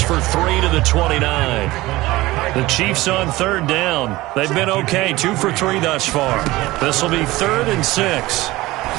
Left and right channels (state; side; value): quieter; left; 19.0 dB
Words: for 3 to the 29. The Chiefs on third down. They've been okay, 2 for 3 thus far. This will be 3rd and 6.